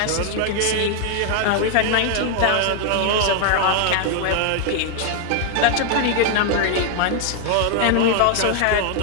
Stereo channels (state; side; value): different; both; correlation 0.00